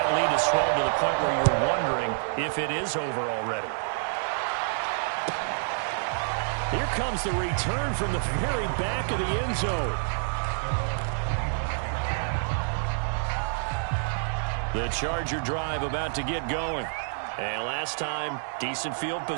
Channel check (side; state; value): left; silent; digital silence